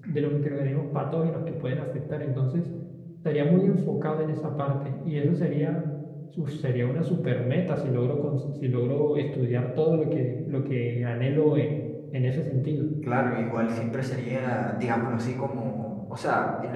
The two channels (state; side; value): identical; both; correlation 1.00